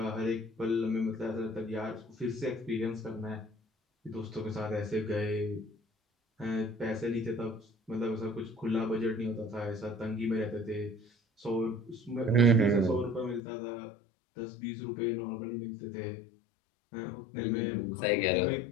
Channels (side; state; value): right; drops out; at 13.4 s